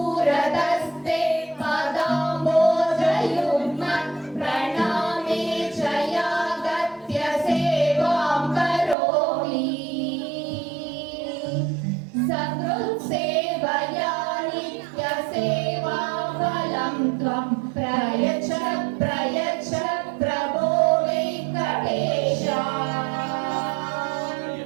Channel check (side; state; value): left; drops out; at 9.0 s